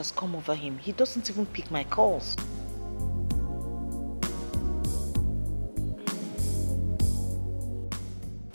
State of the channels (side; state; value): both; inverted; correlation -1.00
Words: come over him. He doesn't even pick my calls.